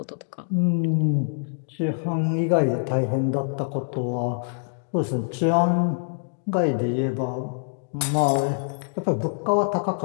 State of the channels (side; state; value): right; silent; digital silence